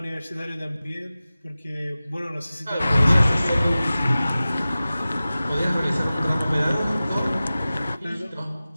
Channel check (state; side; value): inverted; both; correlation -0.96